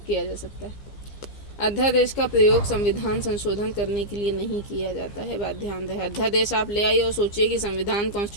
जा सकता है। अध्यादेश का प्रयोग संविधान संशोधन करने के लिए नहीं किया जाता है, बात ध्यान रहे। अध्यादेश आप ले आइए और सोचिए कि संविधान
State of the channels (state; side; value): late; right; 15 ms